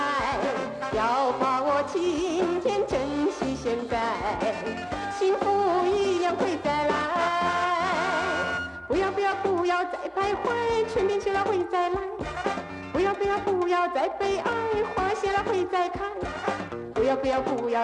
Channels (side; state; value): both; identical; correlation 1.00